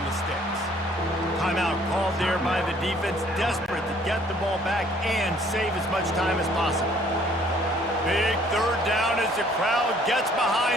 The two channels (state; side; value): normal; both; correlation 0.59